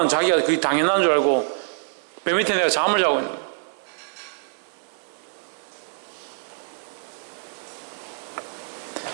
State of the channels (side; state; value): left; silent; 58 dB below the other